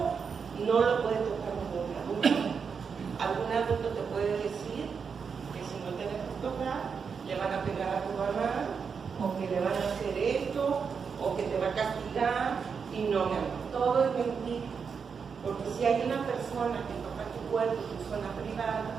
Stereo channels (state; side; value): quieter; left; 6.0 dB